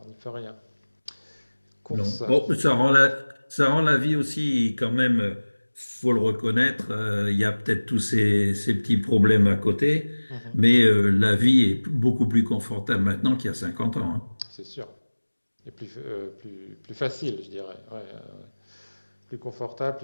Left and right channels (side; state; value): both; inverted; correlation -1.00